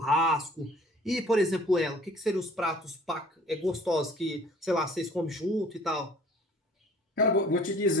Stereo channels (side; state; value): both; normal; correlation 0.52